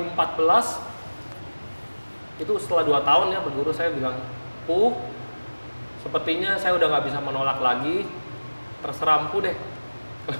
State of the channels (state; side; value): inverted; both; correlation -1.00